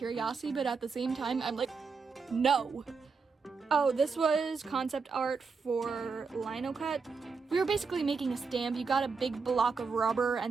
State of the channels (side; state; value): left; quieter; 5.0 dB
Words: but at the same time, I'm like, no. Oh, this was concept art for Lino Cut. We were basically making a stamp. You got a big block of rubber,